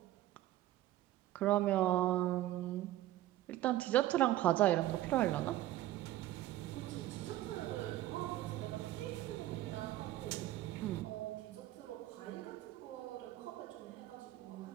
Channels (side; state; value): left; quieter; 14.8 dB